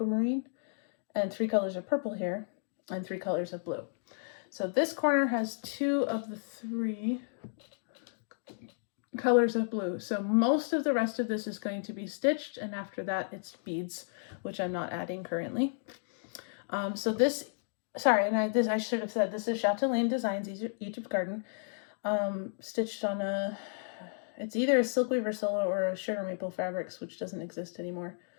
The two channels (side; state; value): right; silent; digital silence